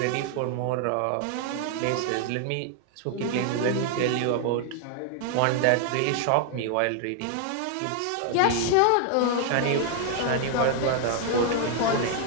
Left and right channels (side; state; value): both; different; correlation 0.00